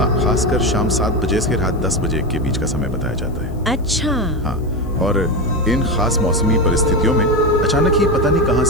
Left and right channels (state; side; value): noise; left; hiss, 30 dB below the sound